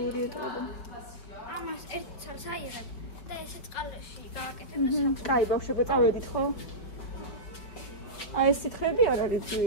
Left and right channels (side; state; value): right; late; 5.1 ms